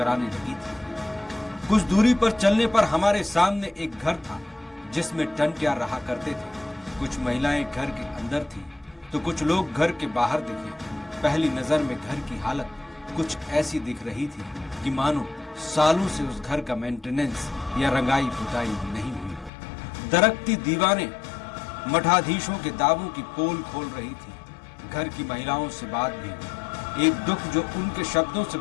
लगी थी। कुछ दूरी पर चलने पर हमारे सामने एक घर था जिसमें टंट्या रहा करते थे। कुछ महिलाएं घर के अंदर थी तो कुछ लोग घर के बाहर दिखे। पहली नजर में घर की हालत कुछ ऐसी दिख रही थी कि मानो सालों से उस घर का मेंटेनेंस या रंगाई पुताई नहीं हुई। दरकती दीवारें मठाधीशों के दावों की पोल खोल रही थी। घर की महिलाओं से बात भी, एक दुख जो उनके शब्दों से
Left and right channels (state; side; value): drops out; right; at 19.5 s